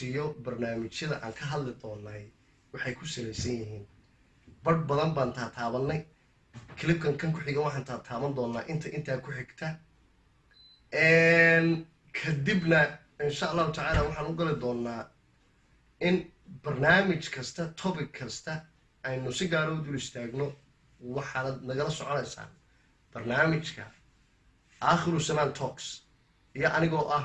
barnaamijyada aan ka hadli doonay waxay ku salaysan yihiin badh badan baan taataabanay clipkan kan ku xiga waxaan taataaban doonaa intaa ku xigta kadibna insha allahu tacaala waxaan u gali doonaa in barnaamij kasta topic kasta aynu si gaar u dul istaagno waxaad nagala soconaysaan barnaamijka Aakhiru Samaan Talks iyo anigoo ah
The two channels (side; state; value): both; identical; correlation 1.00